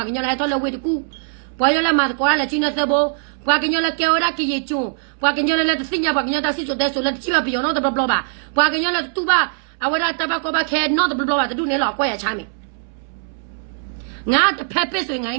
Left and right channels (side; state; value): left; silent; 65 dB below the other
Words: းကညောလာတော့လဝေတကူပွားရလာမှာကွာလာချင်းနေသဘောပွားကညောလာကဲရကီယေကျွန်းပွားကညောလာလက်စညာပွားကညောတာစစ်ဆိုတဲ့ဆိုလက်ချိပါပြောနော်တဘလပါပွားကညောလာတူပါအဝရတဘကောဘခဲနော်တဘလပါတူနေလောက်ကွာရချမ်းမီငါတဖက်ပစ်ဆိုငါ